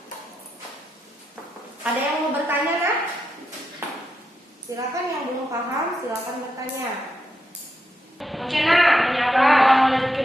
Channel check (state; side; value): normal; both; correlation 0.85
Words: Ada yang mau bertanya, nak? Silakan, yang belum paham silakan bertanya. Oke, nak, tanya apa?